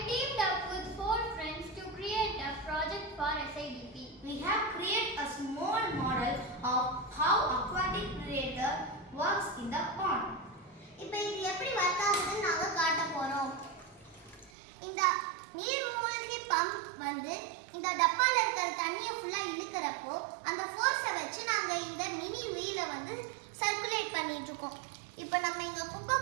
teamed up with 4 friends to create a project for SIDP. We have created a small model of how aquatic predator works in the pond. இப்போ இது எப்படி work ஆகுதுன்னு நாங்க காட்ட போறோம். இந்த நீர்மூழ்கி pump வந்து இந்த டப்பால இருக்கிற தண்ணியை ஃபுல்லா இழுக்கறப்போ அந்த ஃபோர்ஸை வச்சு நாங்க இந்த மினி வீலை வந்து சர்க்குலேட் பண்ணிட்டு இருக்கோம். இப்போ நம்ம இங்க குப்பை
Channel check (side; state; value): left; drops out; at 14.5 s